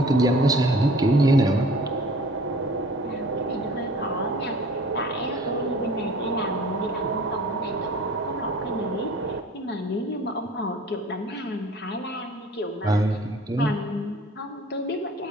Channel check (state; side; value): normal; both; correlation 0.48